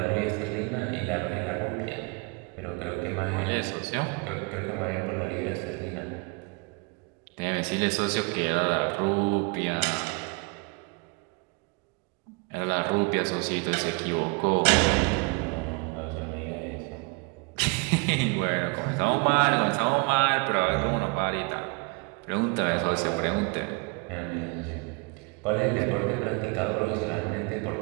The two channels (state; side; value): quieter; left; 30.0 dB